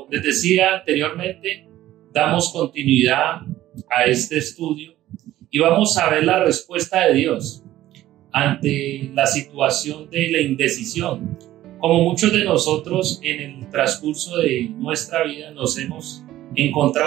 les decía anteriormente, damos continuidad a este estudio y vamos a ver la respuesta de Dios ante la situación de la indecisión. Como muchos de nosotros en el transcurso de nuestra vida nos hemos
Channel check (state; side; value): quieter; left; 14.4 dB